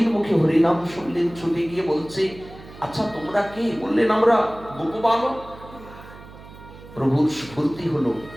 মুখে হরিনাম শুনলেন, ছুটে গিয়ে বলছে, আচ্ছা তোমরা কে? বললেন আমরা গোপ বালক। প্রভুর স্ফূর্তি হলো,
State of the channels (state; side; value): noise; right; hum, 18 dB below the sound